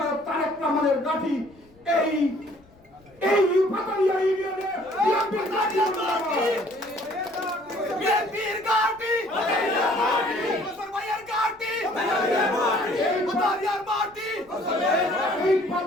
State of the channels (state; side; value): noise; left; rumble, 29 dB below the sound